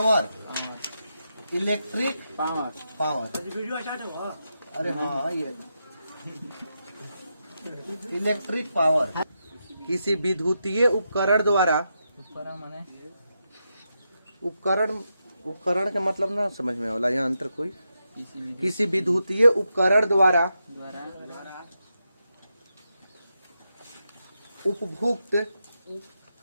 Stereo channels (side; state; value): both; inverted; correlation -0.86